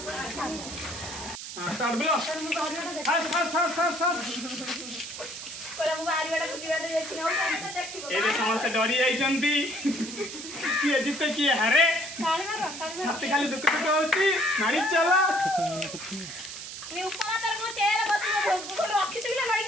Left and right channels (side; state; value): right; noise; hiss, 9 dB below the sound